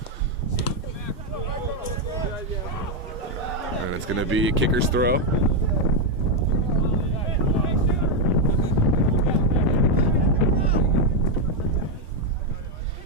And it's going to be a kicker's throw.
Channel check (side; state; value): both; normal; correlation 0.03